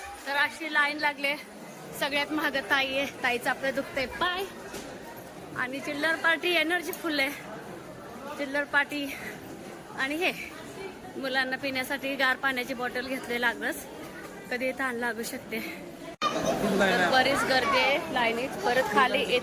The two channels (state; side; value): identical; both; correlation 1.00